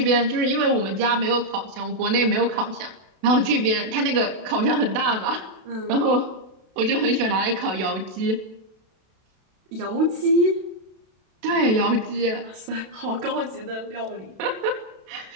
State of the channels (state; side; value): late; left; 32 ms